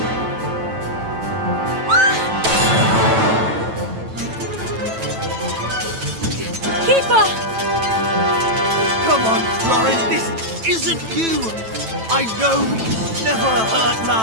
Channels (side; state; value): left; late; 9.1 ms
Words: Kiefer! Come on, Florin, this isn't you! I know we can never hurt